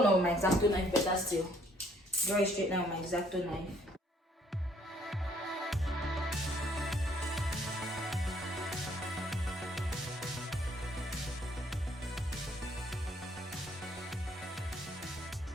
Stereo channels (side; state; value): both; normal; correlation 0.64